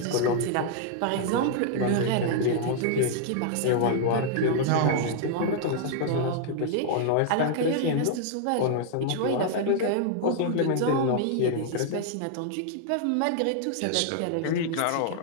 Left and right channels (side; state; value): both; different; correlation 0.00